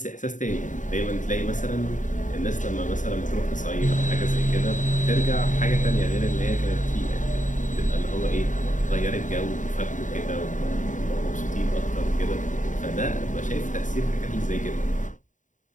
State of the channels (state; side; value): late; right; 0.37 ms